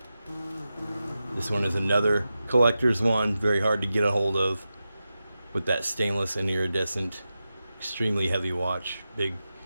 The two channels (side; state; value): both; inverted; correlation -0.92